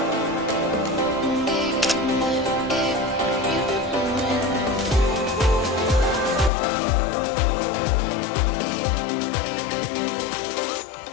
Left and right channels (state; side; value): drops out; right; at 6.5 s